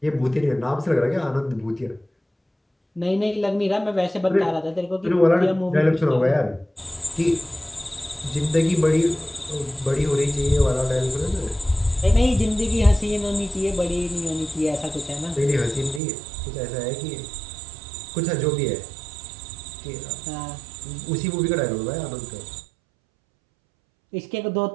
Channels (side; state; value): left; drops out; at 16.0 s